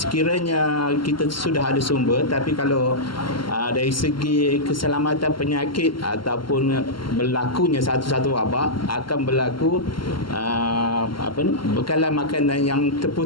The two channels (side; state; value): right; late; 0.73 ms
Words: kita sudah ada sumber, tapi kalau dari segi keselamatan penyakit ataupun berlakunya satu-satu wabak, akan berlaku bekalan makanan yang